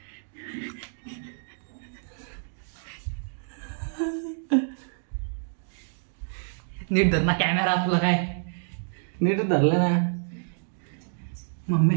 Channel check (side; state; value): left; silent; digital silence